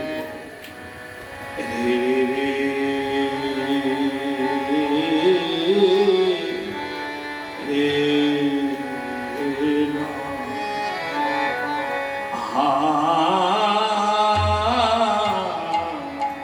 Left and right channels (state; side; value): identical; both; correlation 1.00